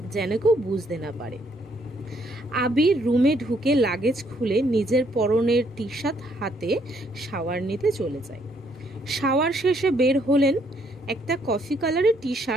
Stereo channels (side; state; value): both; normal; correlation 0.69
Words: যেন কেউ বুঝতে না পারে। আবির রুমে ঢুকে লাগেজ খুলে নিজের পরনের টি শার্ট হাতে শাওয়ার নিতে চলে যায়। শাওয়ার শেষে বের হলেন একটা কফি কালারের টি